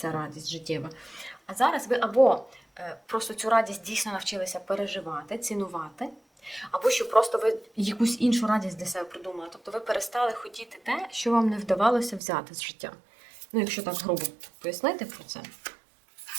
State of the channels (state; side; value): drops out; left; at 12.2 s